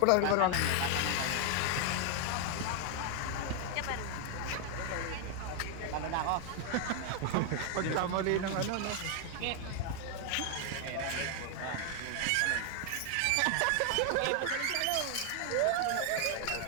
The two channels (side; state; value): both; different; correlation 0.00